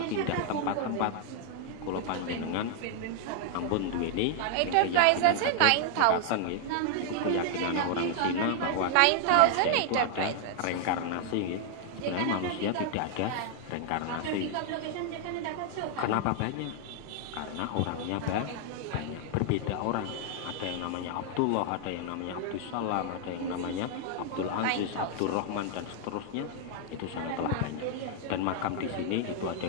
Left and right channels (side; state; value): both; different; correlation 0.00